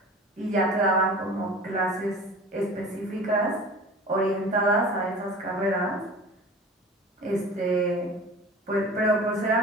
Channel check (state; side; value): normal; both; correlation 0.39